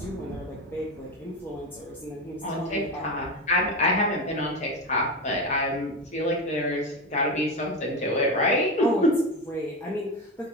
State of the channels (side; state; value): both; normal; correlation 0.19